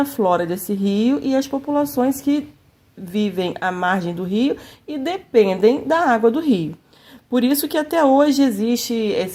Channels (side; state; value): both; identical; correlation 1.00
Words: flora desse rio e as populações que vivem à margem do rio e dependem da água do rio. Por isso que até hoje existem